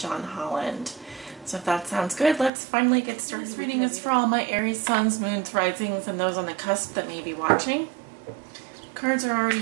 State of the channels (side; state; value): left; drops out; at 2.5 s